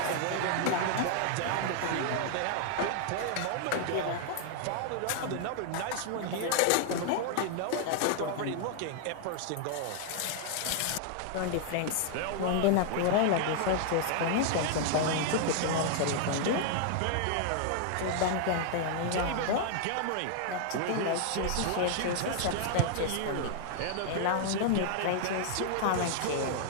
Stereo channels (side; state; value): both; different; correlation -0.01